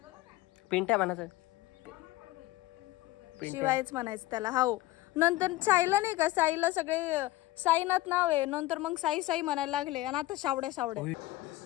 पिंट्या म्हणायचं, शिवायच म्हणायचं त्याला. हो, नंतर साईला नाही का, साईला सगळे साईनाथ नाव आहे, नंतर मग साई साई म्हणायला लागले आणि आता सावड्या.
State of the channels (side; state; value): right; quieter; 17.5 dB